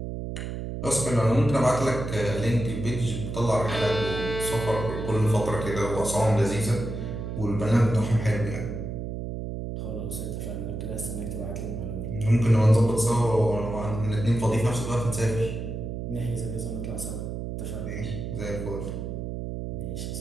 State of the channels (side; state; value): right; noise; hum, 5 dB below the sound